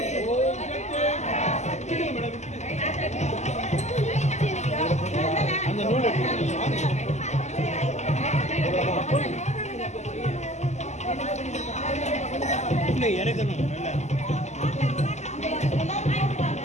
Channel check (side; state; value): right; late; 0.33 ms